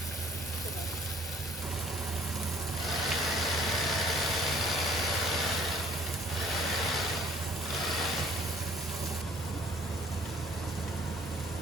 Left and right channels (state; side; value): normal; both; correlation 0.58